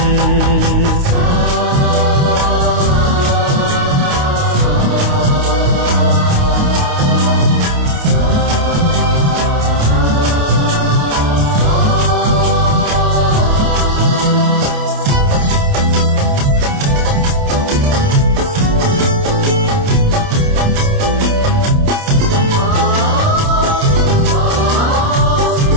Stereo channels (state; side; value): late; left; 28 ms